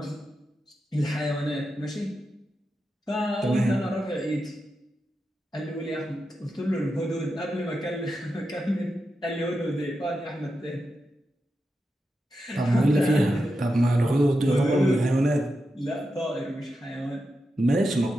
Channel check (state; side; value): normal; both; correlation 0.88